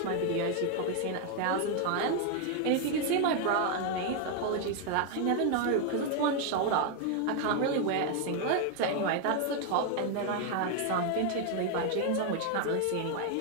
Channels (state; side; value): different; both; correlation 0.00